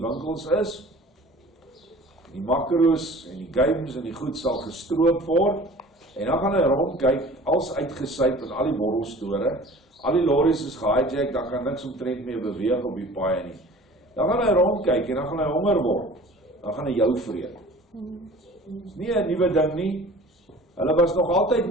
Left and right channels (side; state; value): both; normal; correlation 0.45